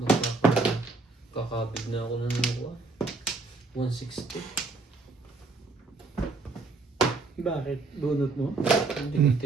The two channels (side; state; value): left; quieter; 3.7 dB